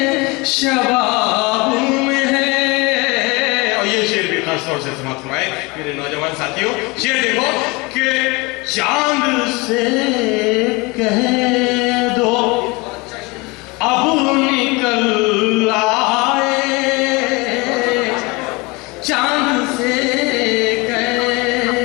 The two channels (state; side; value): quieter; right; 25.8 dB